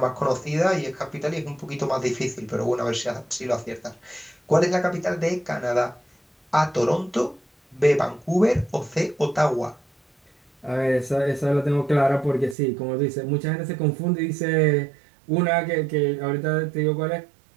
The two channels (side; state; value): left; drops out; at 12.6 s